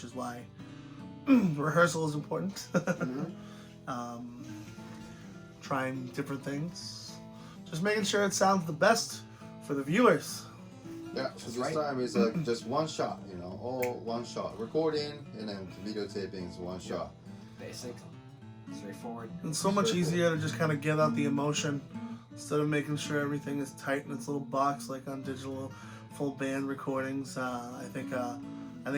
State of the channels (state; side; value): identical; both; correlation 1.00